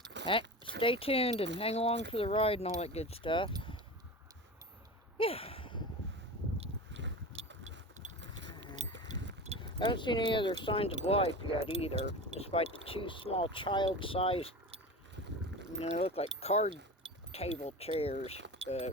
stay tuned and hang along for the ride and all that good stuff. Yeah. I haven't seen any other signs of life yet either, despite the 2 small child-sized, you know, look like card table chairs, but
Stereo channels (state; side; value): normal; both; correlation 0.30